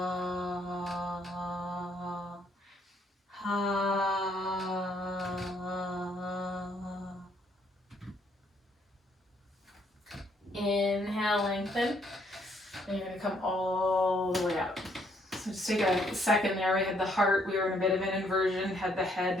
inhale, lengthen. And you're going to come all the way up. So just take a second there. We had the heart, we were in a bit of an inversion, had the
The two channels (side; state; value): both; normal; correlation 0.69